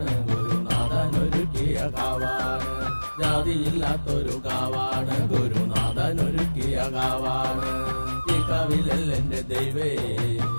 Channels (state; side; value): inverted; both; correlation -1.00